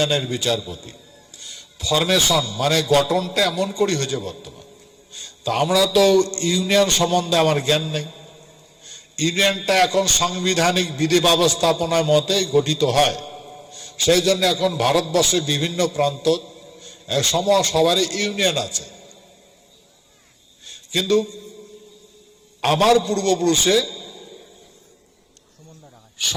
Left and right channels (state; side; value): identical; both; correlation 1.00